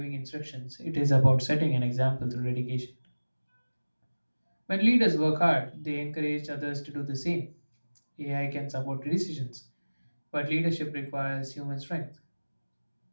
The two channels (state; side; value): inverted; both; correlation -1.00